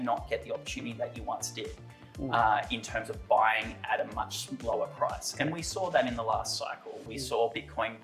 get the opportunity that you once did. In terms of buying at a much lower price. And we saw that in the last cycle. We saw Bitcoin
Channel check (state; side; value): identical; both; correlation 1.00